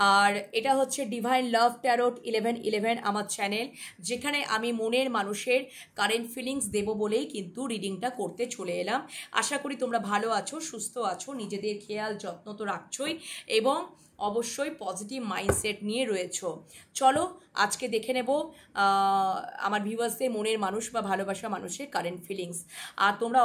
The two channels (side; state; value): both; identical; correlation 1.00